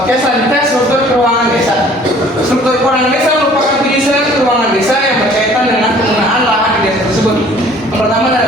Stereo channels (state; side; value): normal; both; correlation 0.53